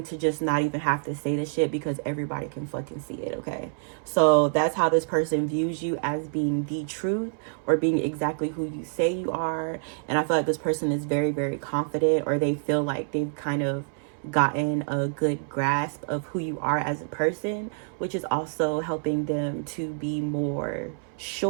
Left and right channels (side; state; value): left; silent; 60 dB below the other